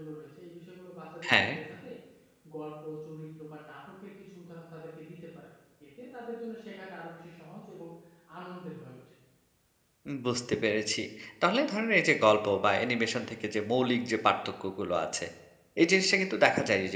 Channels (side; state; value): both; identical; correlation 1.00